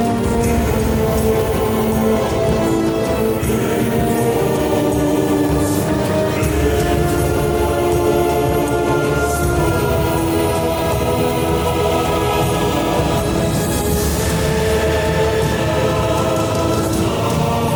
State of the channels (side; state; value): both; identical; correlation 1.00